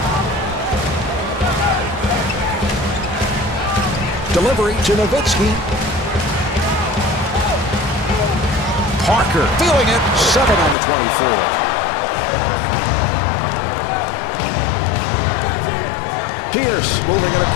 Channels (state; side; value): drops out; right; at 10.8 s